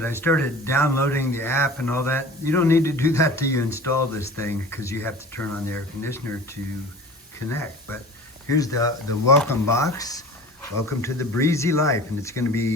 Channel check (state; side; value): normal; both; correlation 0.40